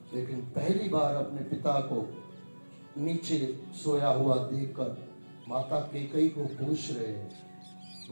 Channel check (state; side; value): inverted; both; correlation -1.00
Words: लेकिन पहली बार अपने पिता को नीचे सोया हुआ देखकर माता कैकेयी को पूछ रहे हैं,